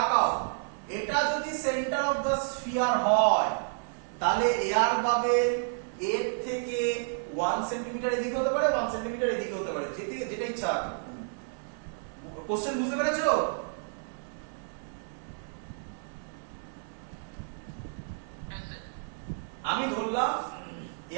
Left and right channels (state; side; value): silent; left; 57 dB below the other